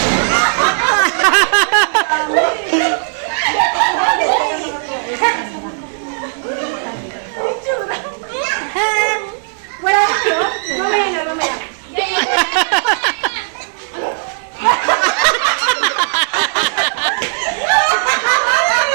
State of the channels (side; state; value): left; silent; digital silence